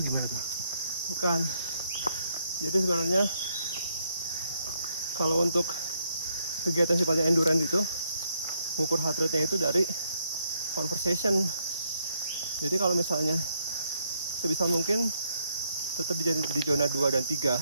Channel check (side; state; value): both; inverted; correlation -0.74